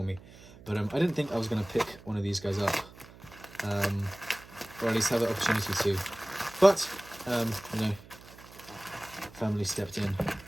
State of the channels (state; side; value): noise; right; hum, 20 dB below the sound